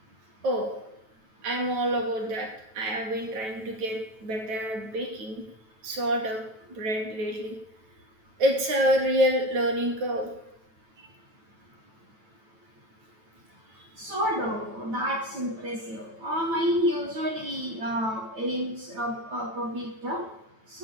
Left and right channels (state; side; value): late; left; 9.1 ms